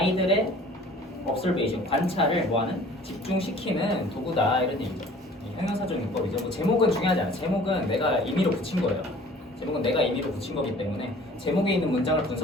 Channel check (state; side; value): normal; both; correlation 0.50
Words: observation, 관찰을 뭐하는? 집중시키는 도구다 이런 얘기죠. 형용사적 용법이죠. 뭐 제목은 중요하지 않아. 제목은 내가 임의로 붙인 거예요. 제목은 내가 임의로 붙인 거기 때문에 제목에 있는 문장을